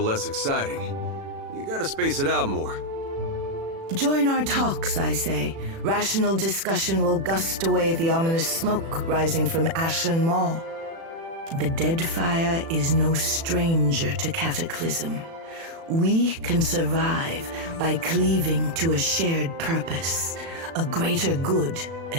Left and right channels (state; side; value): late; left; 36 ms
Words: less exciting. You gotta space it out more. Join our talks, I say. Rational discussion will gust away the ominous smoke rising from Ashen Maw. The Deadfire is no stranger to cataclysm. We can survive by cleaving to a shared purpose, a greater good,